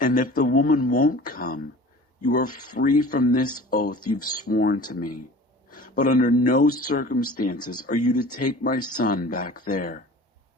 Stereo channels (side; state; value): both; normal; correlation 0.42